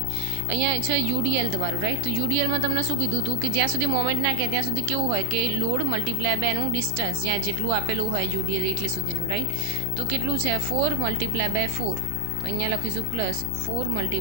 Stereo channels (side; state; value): both; different; correlation 0.00